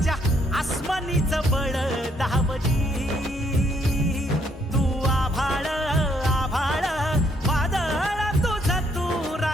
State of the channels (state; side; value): normal; both; correlation 0.70